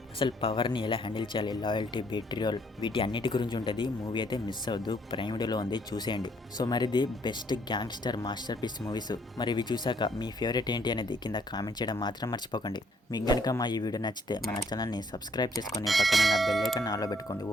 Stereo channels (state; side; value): normal; both; correlation 0.66